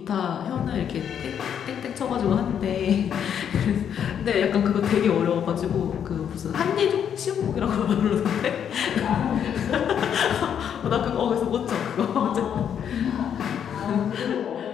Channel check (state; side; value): quieter; right; 8.6 dB